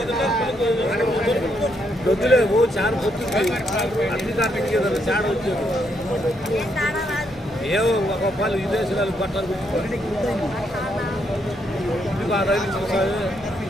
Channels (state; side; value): normal; both; correlation 0.76